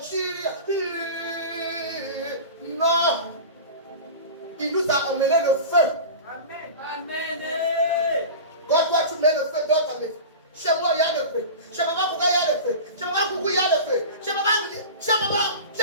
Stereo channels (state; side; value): inverted; both; correlation -0.31